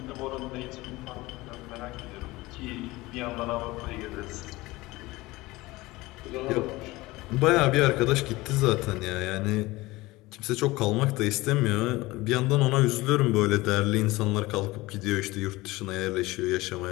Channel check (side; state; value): right; quieter; 20.4 dB